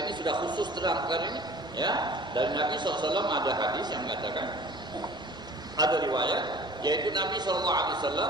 ini sudah khusus terang perkara ini, ya. Dari Nabi sallallahu alaihi wasallam ada hadis yang mengatakan, ada riwayat, yaitu Nabi sallallahu alaihi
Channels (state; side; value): normal; both; correlation 0.46